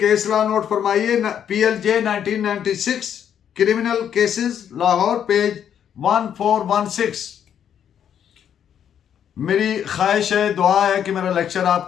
लॉ नोट फरमाइए. PLJ 1996 criminal cases Lahore page 1416. मेरी ख्वाहिश है, दुआ है कि मेरा लेक्चर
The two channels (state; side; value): quieter; right; 9.0 dB